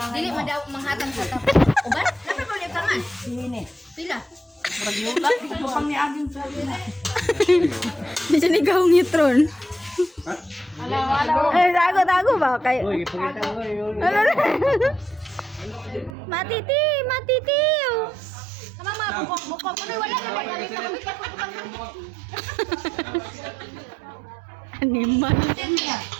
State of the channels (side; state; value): left; drops out; at 16.2 s